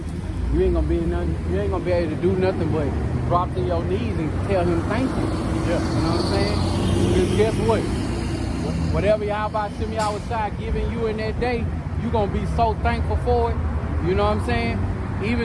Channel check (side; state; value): both; identical; correlation 1.00